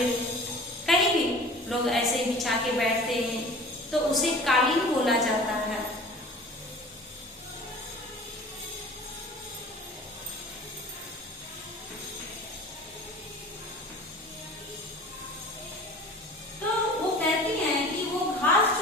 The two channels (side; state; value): both; normal; correlation 0.42